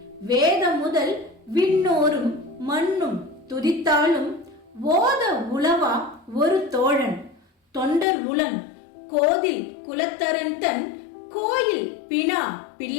வேத முதல் விண்ணோரும் மண்ணும் துதித்தாலும் ஓத உளவா ஒரு தோழன் தொண்டர் உளன் கோதில் குலத்தரன் தன் கோயில் பினா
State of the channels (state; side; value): drops out; right; at 8.1 s